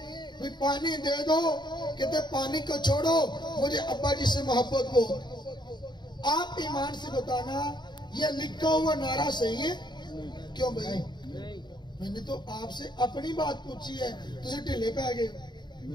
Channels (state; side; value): late; right; 0.21 ms